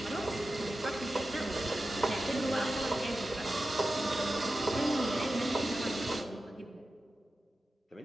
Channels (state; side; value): normal; both; correlation 0.93